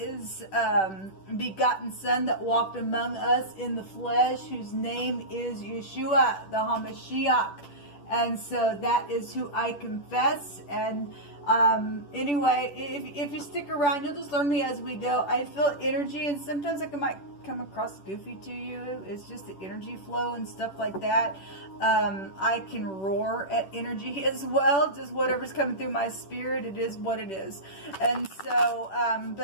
begotten son that walked among us in the flesh, whose name is Yeshua, the HaMashiach. And so that is who I confess. And anyway, if you stick around, you'll just learn me as we go. I feel energy, and sometimes I might come across goofy to you. It's just the energy flow and stuff like that. I can roar at energy as well. Just whatever's coming through my spirit, it is what it is. And so,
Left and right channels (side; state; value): right; late; 10 ms